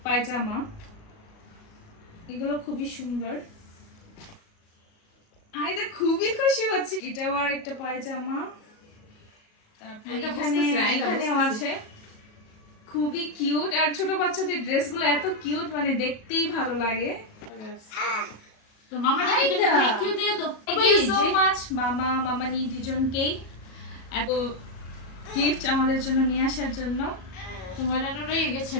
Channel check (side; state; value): right; late; 37 ms